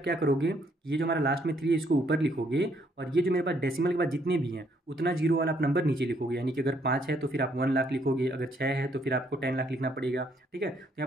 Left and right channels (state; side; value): normal; both; correlation 0.69